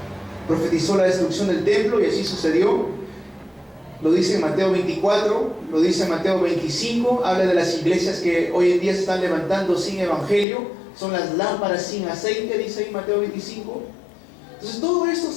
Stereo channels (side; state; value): right; drops out; at 10.5 s